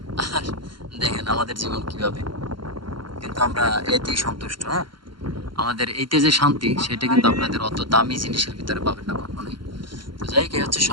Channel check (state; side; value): late; left; 0.73 ms